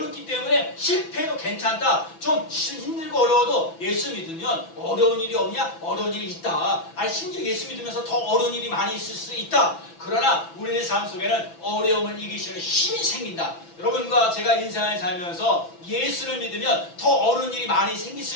때문에 실패해도 괜찮다. 좀 힘들고 어려워도 예수 믿으면 어려운 일이 없냐? 어려운 일이 있다. 심지어 예수 믿으면서 더 어려운 일이 많이 있을 수 있다. 그러나 우리의 삶 속에는 어려움을 이기시는 힘이 생긴다. 여러분과 제가 인생을 살면서 예수를 믿으면 더 어려운 일이 많이 생길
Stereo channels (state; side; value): late; right; 6.0 ms